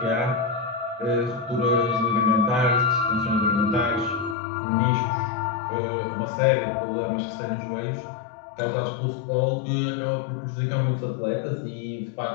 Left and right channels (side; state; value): right; drops out; at 4.4 s